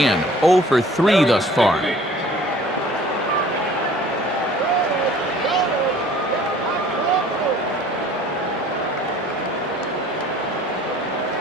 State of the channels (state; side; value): normal; both; correlation 0.51